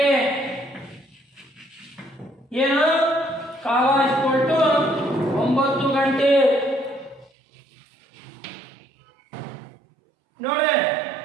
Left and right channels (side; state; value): left; drops out; at 7.3 s